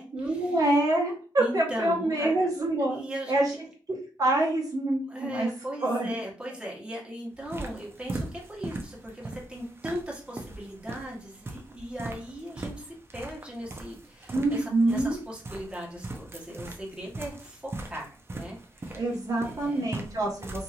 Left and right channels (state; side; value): normal; both; correlation 0.78